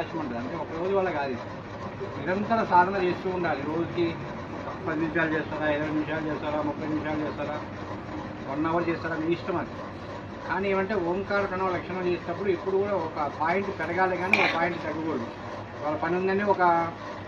ఉంటుంది. అంటే ఒక రోజు వల్ల కాదు, నిరంతర సాధన చేస్తూ ఉండాలి. రోజుకి 10 నిమిషాలు చేస్తారా, 20 నిమిషాలు చేస్తారా, 30 నిమిషాలు చేస్తారా, 1 అవర్ చేస్తారా, మీ ఇష్టం అది. కానీ ఏమంటే ఓంకార ప్రణవ లక్షణం చేసేటప్పుడు ఇప్పుడు కూడా ఒక పాయింట్ పెరగాలి కానీ ఒక పాయింట్ తగ్గకూడదు. వాళ్ళ పని ఉందని ఒక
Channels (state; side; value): identical; both; correlation 1.00